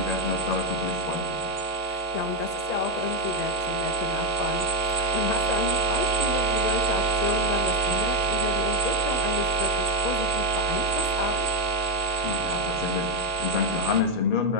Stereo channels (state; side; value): late; left; 1.9 ms